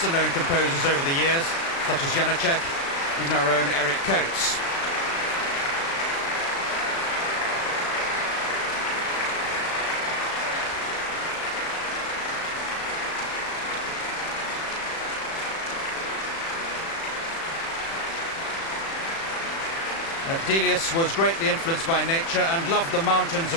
composers over the years, such as Janacek, even our own Eric Coates. Delius was greatly influenced by nature and loved the mountains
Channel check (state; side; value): late; right; 36 ms